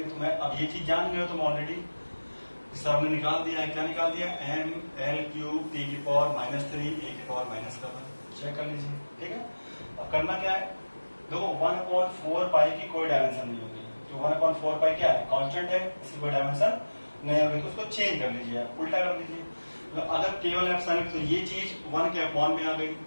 तो मैं अब ये चीज जान गए हो तुम ऑलरेडी, सर ने निकाल दिया है। क्या निकाल दिया, M/L³ T⁻³ A⁻⁻7। चेक कर लीजिए, ठीक है। अब करना क्या है, देखो 1/4π की कोई डायमेंशन नहीं होगी। तो 1/4π क्या है, कांस्टेंट है, इसकी कोई डायमेंशन नहीं होगी। तो उसको चेंज कर लीजिए, आप उल्टा कर लीजिए। तो अगर केवल एप्सिलॉन, तो ये चीज 1 के अपॉन में आ गई।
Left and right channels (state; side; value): inverted; both; correlation -1.00